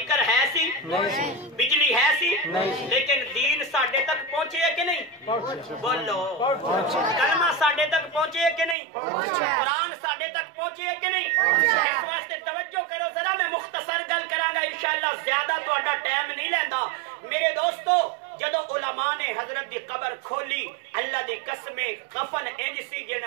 ہے سی، بجلی ہے سی، لیکن دین ساڈے تک پہنچے ہے کہ نہیں؟ بولو، کلمہ ساڈے تک پہنچے ہے کہ نہیں؟ قرآن ساڈے تک پہنچے ہے کہ نہیں؟ اس واسطے توجہ کرو ذرا، میں مختصر گل کراں گا انشاءاللہ، زیادہ تہاڈا ٹائم نہیں لیندا میرے دوستو۔ جدو علماء نے حضرت دی قبر کھولی، اللہ دی قسمیں کفن انج سی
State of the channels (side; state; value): left; drops out; at 8.8 s